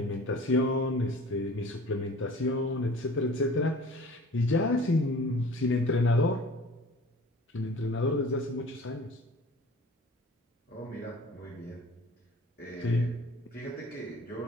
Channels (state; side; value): normal; both; correlation 0.44